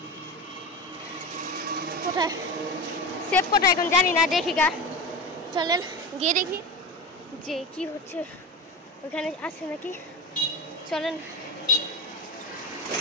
কোথায় সেব কোথায় এখন জানি না দেখি গা চলেন গিয়ে দেখি যে কি হচ্ছে ওখানে আছে নাকি চলেন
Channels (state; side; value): normal; both; correlation 0.25